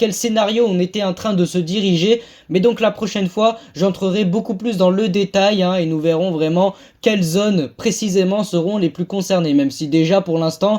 scénario on était en train de se diriger. Mais donc la prochaine fois j'entrerai beaucoup plus dans le détail et nous verrons vraiment quelles zones précisément seront les plus concernées. Même si déjà pour l'instant,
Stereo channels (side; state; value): both; identical; correlation 1.00